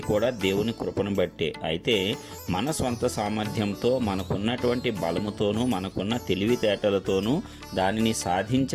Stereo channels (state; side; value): identical; both; correlation 1.00